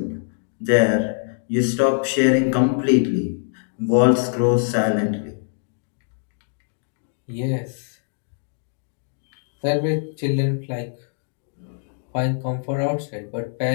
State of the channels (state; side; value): silent; right; digital silence